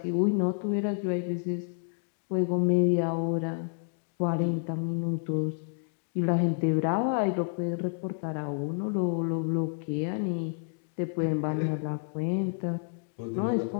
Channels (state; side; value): silent; right; digital silence